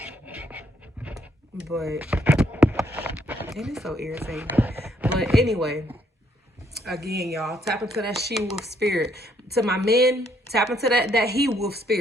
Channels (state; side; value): normal; both; correlation 0.70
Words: But it is so irritating. But anyway, again, y'all, tap into that she-wolf spirit. To my men, tap into that he-wolf